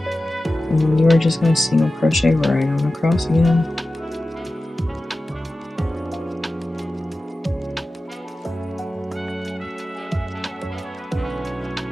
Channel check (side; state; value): both; normal; correlation 0.95